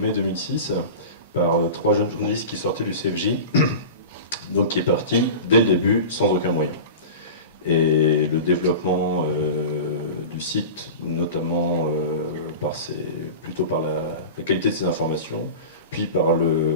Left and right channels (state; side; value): inverted; both; correlation -0.31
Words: 2006 par 3 jeunes journalistes qui sortaient du CFJ, donc qui est parti dès le début sans aucun moyen. Et le développement du site, notamment plutôt par la qualité de ses informations, puis par